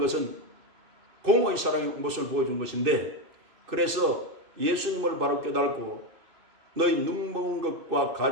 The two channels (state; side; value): late; left; 2.6 ms